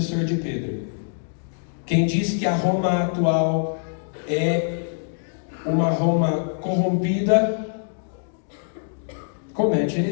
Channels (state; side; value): silent; right; digital silence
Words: de Pedro. Quem diz que a Roma atual é uma Roma corrompida, comete